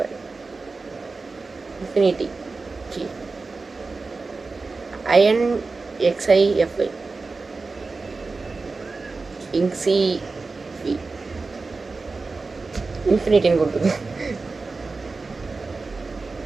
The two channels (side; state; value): left; quieter; 3.9 dB